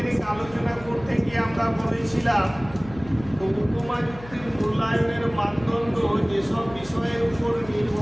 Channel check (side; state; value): left; noise; hum, 18 dB below the sound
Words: আলোচনা করতে গিয়ে আমরা বলেছিলাম তো উপমা যুক্তির মূল্যায়নের মানদণ্ড যেসব বিষয়ের উপর